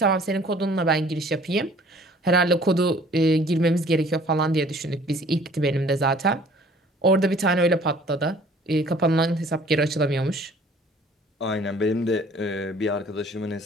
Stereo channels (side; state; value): both; normal; correlation 0.53